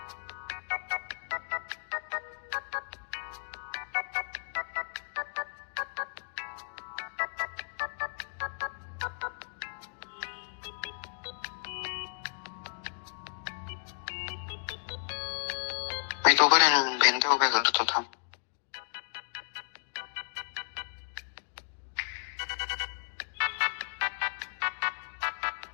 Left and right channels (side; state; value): right; silent; digital silence